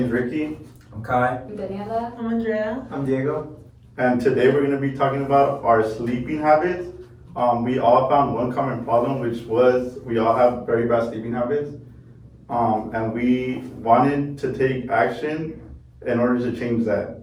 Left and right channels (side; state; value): both; identical; correlation 1.00